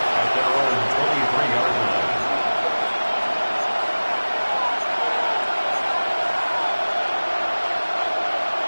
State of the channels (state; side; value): inverted; both; correlation -1.00